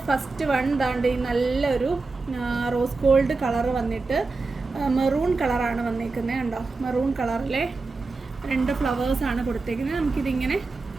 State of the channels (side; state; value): left; quieter; 3.8 dB